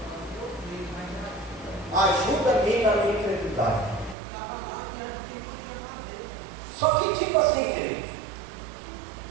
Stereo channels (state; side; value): drops out; left; at 4.2 s